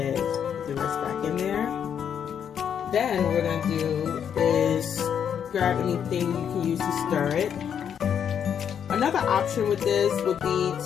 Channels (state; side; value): quieter; right; 8.3 dB